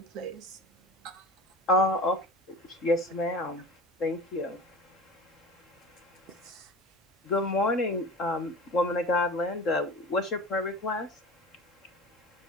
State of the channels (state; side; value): normal; both; correlation 0.34